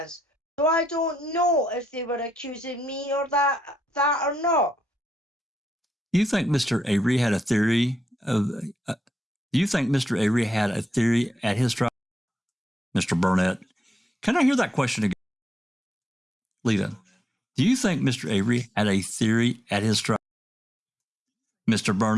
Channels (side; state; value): both; normal; correlation 0.82